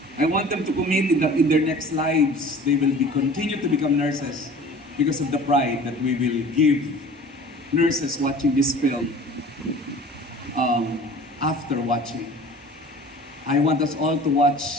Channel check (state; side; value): normal; both; correlation 0.44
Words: I want them to commit that in their next lives, they will continue to become nurses because of the pride that we will give nurses watching this film after watching. I want us all to